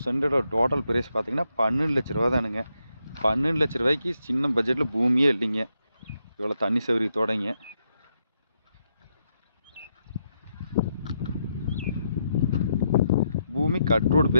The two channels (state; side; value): inverted; both; correlation -0.81